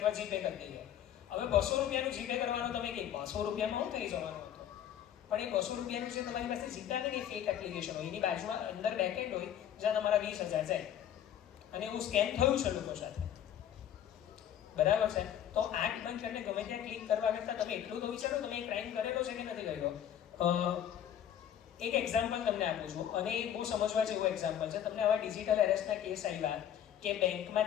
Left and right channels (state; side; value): quieter; right; 10.2 dB